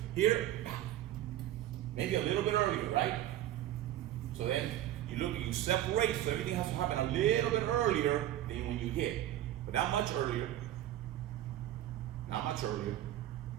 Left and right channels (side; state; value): left; quieter; 13.1 dB